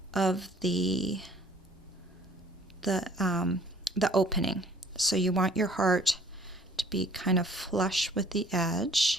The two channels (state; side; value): normal; both; correlation 0.55